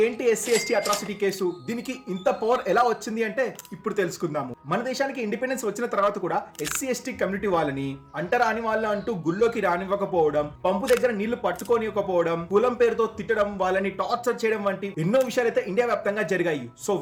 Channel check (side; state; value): both; identical; correlation 1.00